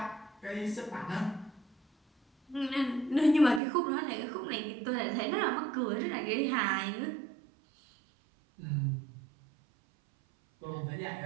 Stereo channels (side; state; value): left; drops out; at 3.6 s